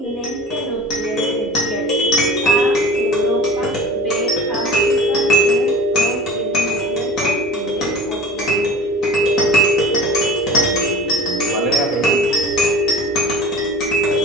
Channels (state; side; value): normal; both; correlation 0.40